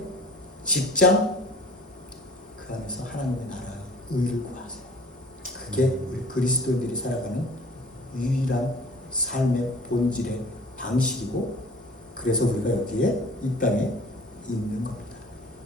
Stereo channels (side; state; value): both; normal; correlation 0.48